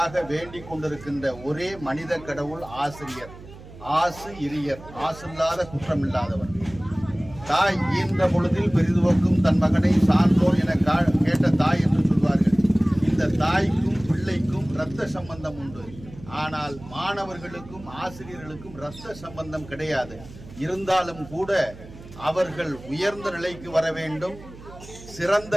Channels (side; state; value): right; noise; hum, 17 dB below the sound